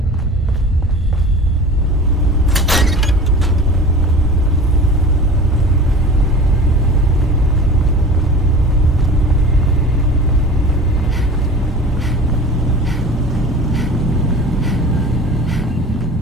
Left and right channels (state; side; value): normal; both; correlation 0.39